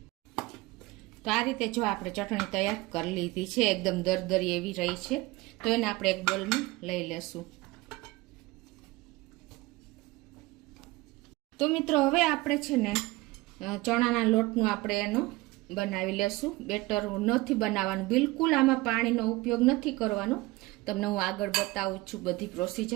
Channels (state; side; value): quieter; left; 20.9 dB